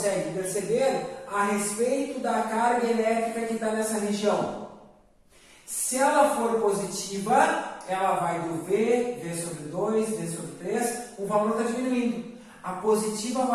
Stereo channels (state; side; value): identical; both; correlation 1.00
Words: perceber a respeito da carga elétrica que está nessa região? Se ela for positiva, ela vai do V sobre 2, V sobre 3, o valor está diminuindo. A positiva